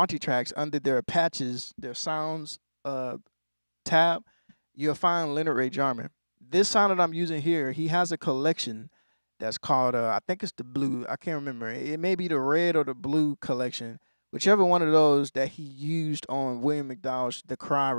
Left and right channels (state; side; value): inverted; both; correlation -1.00